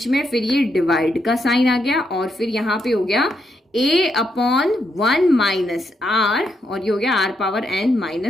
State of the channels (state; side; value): normal; both; correlation 0.79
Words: में फिर ये डिवाइड का साइन आ गया, और फिर यहाँ पे हो गया a upon one minus r, और ये हो गया r power N